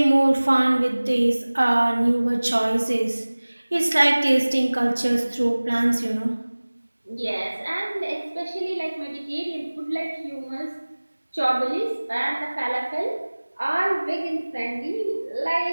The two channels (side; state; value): both; inverted; correlation -1.00